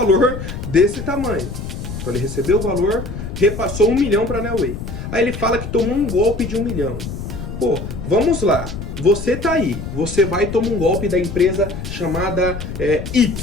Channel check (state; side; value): noise; left; rumble, 7 dB below the sound